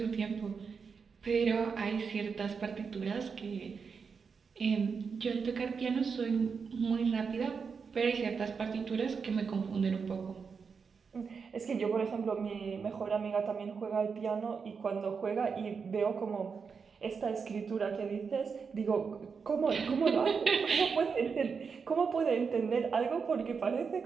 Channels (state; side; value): quieter; left; 5.7 dB